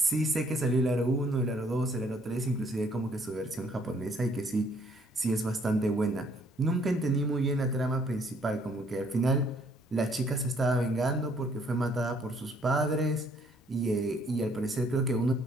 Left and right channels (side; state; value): both; normal; correlation 0.64